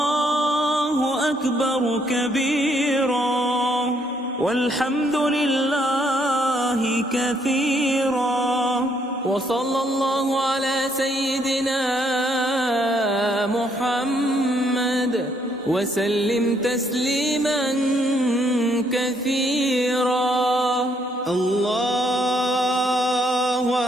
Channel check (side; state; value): both; normal; correlation 0.70